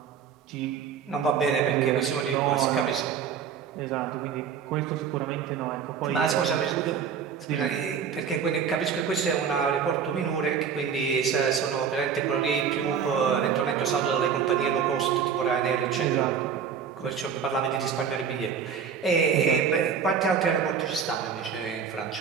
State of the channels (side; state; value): left; quieter; 7.0 dB